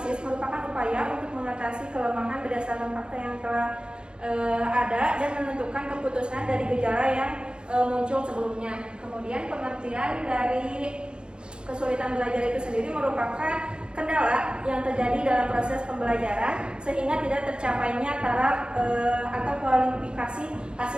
merupakan upaya untuk mengatasi kelemahan berdasarkan fakta yang telah ada dan menentukan keputusan dari gejala yang muncul sebelumnya. Kemudian pengertian dari kesulitan belajar itu sendiri merupakan kendala yang terjadi dalam proses pembelajaran sehingga tidak tercapainya taraf atau kualifikasi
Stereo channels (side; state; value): left; late; 0.051 ms